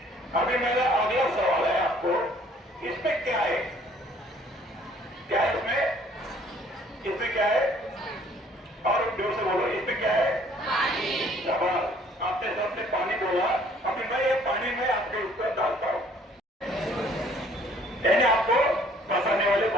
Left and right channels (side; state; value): both; normal; correlation 0.58